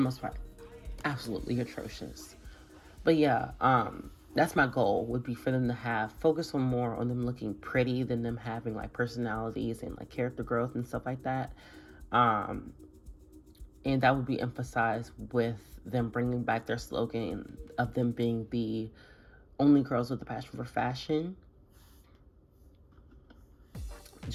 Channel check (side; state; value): both; identical; correlation 1.00